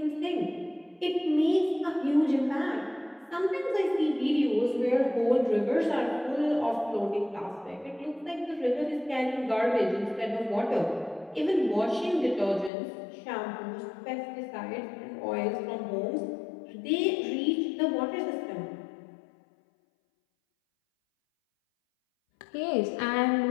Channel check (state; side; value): drops out; right; at 12.7 s